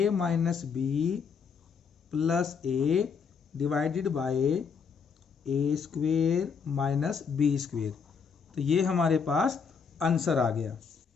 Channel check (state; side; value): quieter; right; 6.1 dB